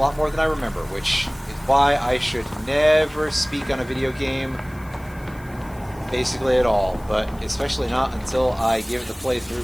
more than I remember, which is why I should never speak on a video game basically at all, but especially not until I give it the playthrough.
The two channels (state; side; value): noise; left; hiss, 25 dB below the sound